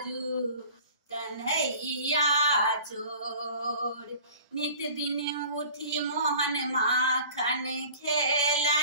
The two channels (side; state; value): both; inverted; correlation -0.45